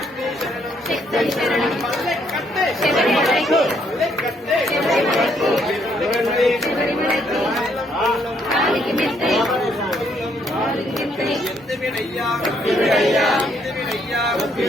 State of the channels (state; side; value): normal; both; correlation 0.70